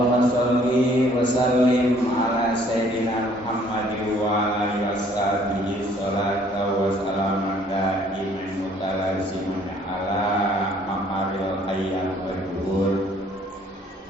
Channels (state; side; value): normal; both; correlation 0.60